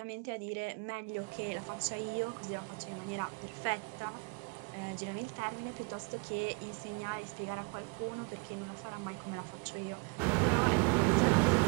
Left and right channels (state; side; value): quieter; left; 31.2 dB